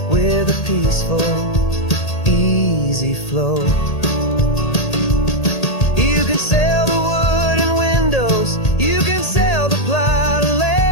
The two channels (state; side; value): late; right; 1.8 ms